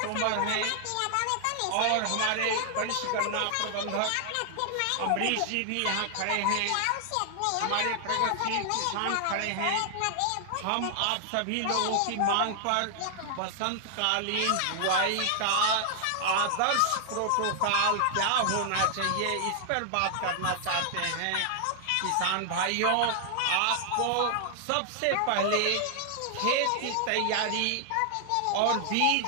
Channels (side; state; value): both; different; correlation 0.00